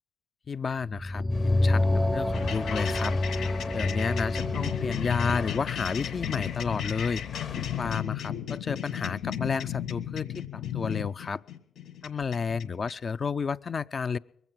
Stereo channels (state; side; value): quieter; right; 4.1 dB